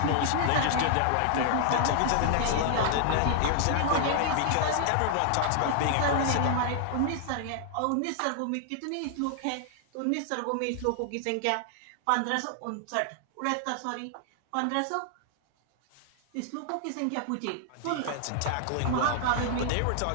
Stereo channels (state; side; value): different; both; correlation -0.01